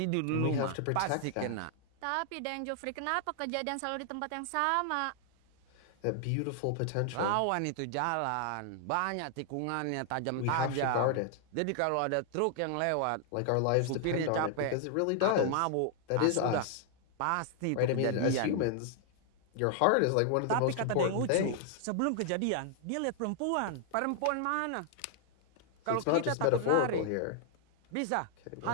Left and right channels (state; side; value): different; both; correlation 0.00